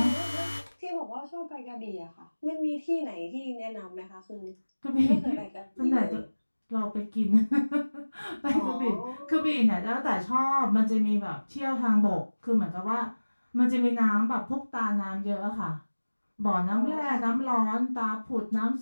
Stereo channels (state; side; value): inverted; both; correlation -1.00